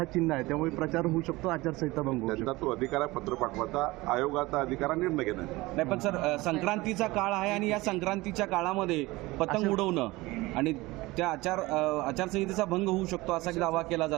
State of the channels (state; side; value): quieter; left; 20.9 dB